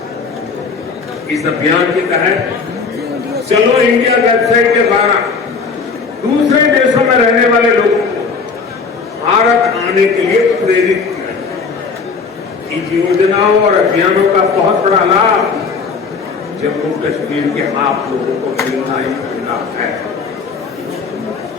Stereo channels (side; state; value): right; quieter; 5.0 dB